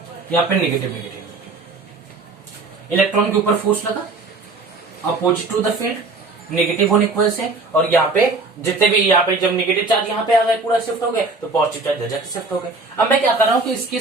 यहाँ पे नेगेटिव नेगेटिव। इलेक्ट्रॉन के ऊपर फोर्स लगा opposite to the field, negative होने की वजह से, और यहाँ पे जितने भी यहाँ पे जब नेगेटिव चार्ज यहाँ पे आ गए पूरा शिफ्ट हो गए, तो पॉजिटिव चार्ज जाके शिफ्ट हो गए। अब मैं क्या कर रहा हूँ कि इसके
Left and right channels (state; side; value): quieter; left; 3.7 dB